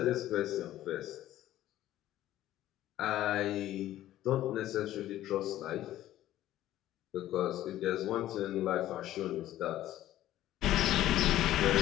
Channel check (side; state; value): right; quieter; 13.7 dB